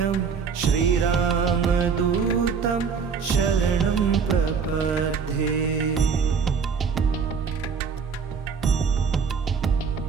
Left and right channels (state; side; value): quieter; left; 5.9 dB